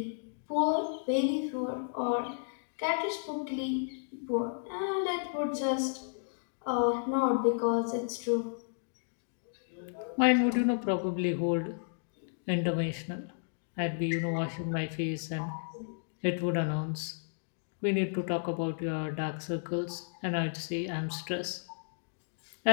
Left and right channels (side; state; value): right; silent; digital silence